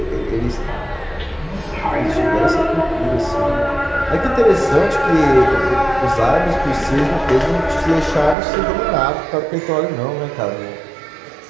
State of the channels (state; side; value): drops out; left; at 8.3 s